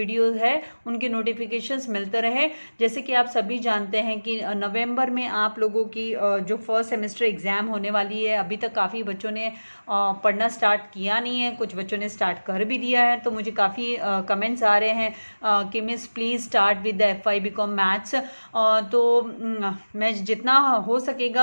है उनके नोटिफिकेशंस मिलते रहे। जैसे कि आप सभी जानते हैं कि नवंबर में आप लोगों की जो फर्स्ट सेमेस्टर एग्ज़ाम होने वाली है, अभी तक काफ़ी बच्चों ने पढ़ना स्टार्ट किया नहीं है, कुछ बच्चों ने स्टार्ट कर भी दिया है। तो मुझे काफ़ी कमेंट्स आ रहे हैं कि miss please start with the FY BCom maths. तो मैं जितना हो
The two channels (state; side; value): inverted; both; correlation -1.00